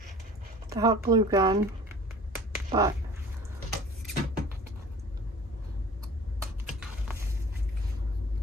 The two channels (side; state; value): both; normal; correlation 0.45